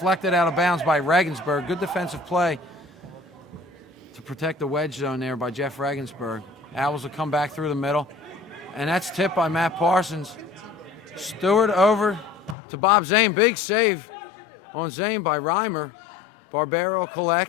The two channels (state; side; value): drops out; right; at 12.6 s